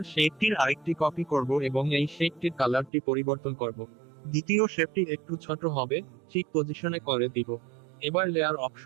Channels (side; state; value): left; drops out; at 2.9 s